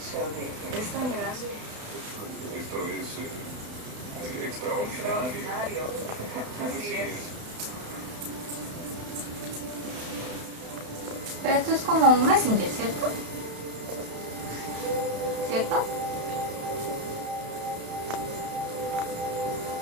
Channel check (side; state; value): left; late; 32 ms